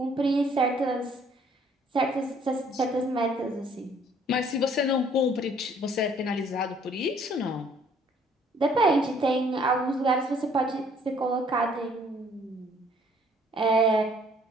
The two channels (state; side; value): normal; both; correlation 0.60